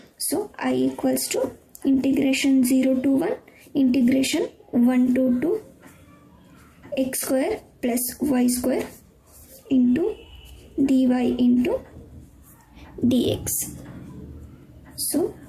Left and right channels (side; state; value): both; identical; correlation 1.00